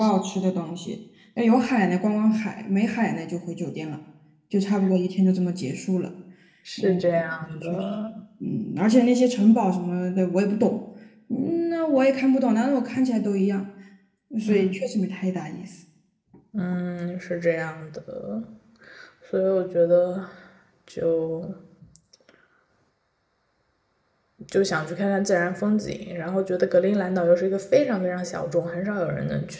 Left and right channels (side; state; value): both; identical; correlation 1.00